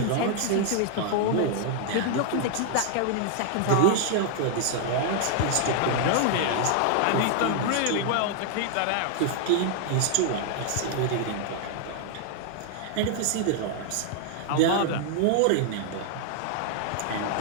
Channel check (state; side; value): different; both; correlation 0.00